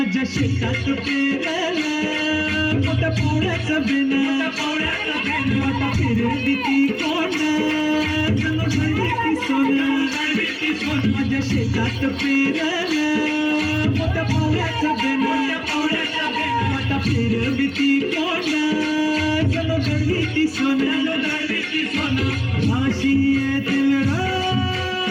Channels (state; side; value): identical; both; correlation 1.00